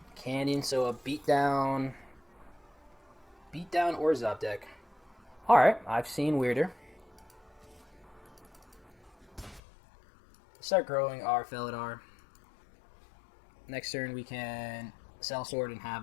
Canyon, so a beatdown or Zop deck. Alright, I've seen weirder. Start growing our Felidar. Next turn we can sell sword and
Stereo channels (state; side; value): drops out; right; at 9.6 s